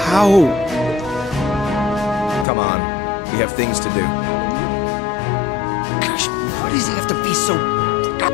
How? Come on. We have things to do. Gosh, why does he have to be so...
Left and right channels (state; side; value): drops out; right; at 2.5 s